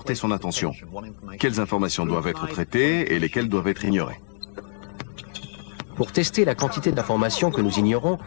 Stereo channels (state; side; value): silent; right; digital silence